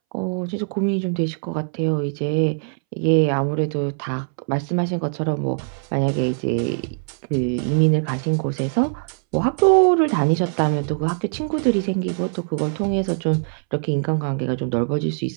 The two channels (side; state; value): left; silent; 64 dB below the other